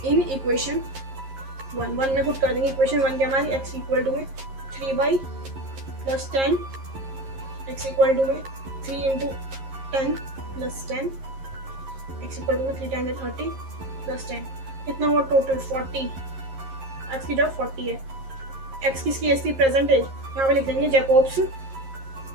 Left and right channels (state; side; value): late; left; 11 ms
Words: in equation 1 में पुट कर देंगे। इक्वेशन 1 की हमारी x इक्वल टू में 3y plus 10, x equal to में 3 into 10 plus 10, x equal to में 3 10 30 प्लस 10, कितना हुआ टोटल 40। x की जब 40 है, x किसकी है, इसकी प्रेजेंट एज, यहाँ पे लिख देंगे जैकोब्स,